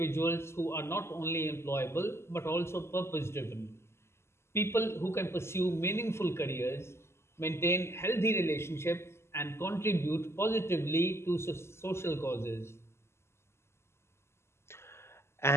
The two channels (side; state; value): right; late; 0.13 ms